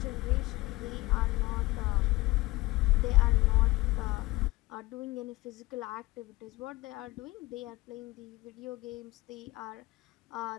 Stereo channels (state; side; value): quieter; right; 20.5 dB